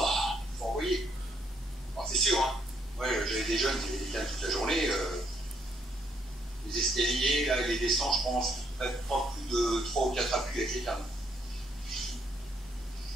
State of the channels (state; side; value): normal; both; correlation 0.71